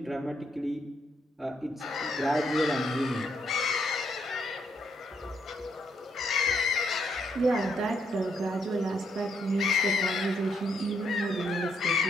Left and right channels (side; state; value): both; normal; correlation 0.75